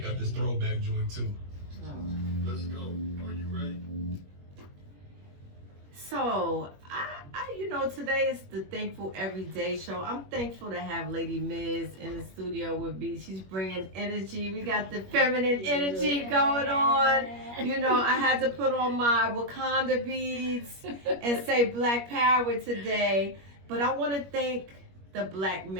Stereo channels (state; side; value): late; left; 21 ms